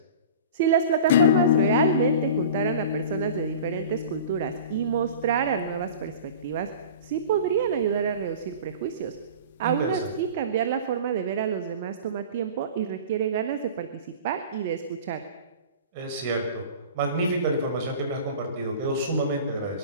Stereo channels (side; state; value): both; inverted; correlation -0.38